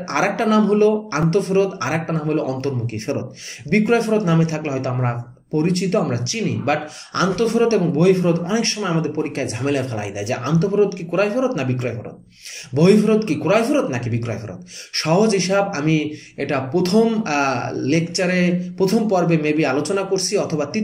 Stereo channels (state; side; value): identical; both; correlation 1.00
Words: আরেকটা নাম হলো আন্তঃফেরত, আরেকটা নাম হলো অন্তর্মুখী ফেরত। বিক্রয় ফেরত নামে থাকলে হয়তো আমরা পরিচিত, আমরা চিনি, বাট আন্তঃফেরত এবং বহি ফেরত অনেক সময় আমাদের পরীক্ষায় ঝামেলা ফেলাই দেয় যে আন্তঃফেরত কি ক্রয় ফেরত না বিক্রয় ফেরত, বহি ফেরত কি ক্রয় ফেরত নাকি বিক্রয় ফেরত। সহজ হিসাব আমি এটা প্রথম পর্বে মেবি আলোচনা করছি, অথবা